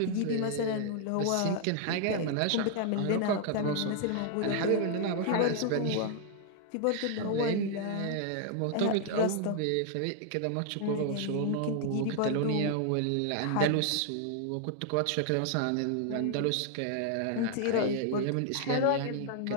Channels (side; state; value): both; different; correlation 0.00